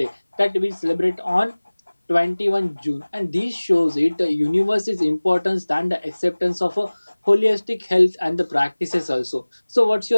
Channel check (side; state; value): both; inverted; correlation -1.00